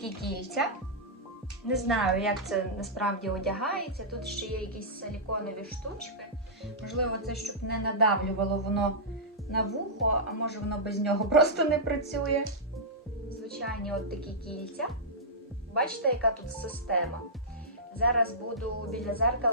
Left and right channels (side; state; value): both; normal; correlation -0.13